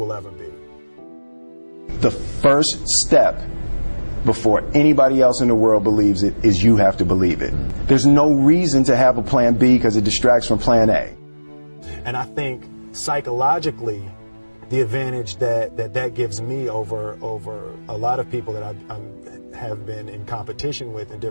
ever be. The first step before anybody else in the world believes it is you have to believe it. There's no reason to have a plan B because it distracts from plan A. And I think psychologically, the advantage that gives me over a lot of people that I have been in competition with in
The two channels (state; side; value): inverted; both; correlation -1.00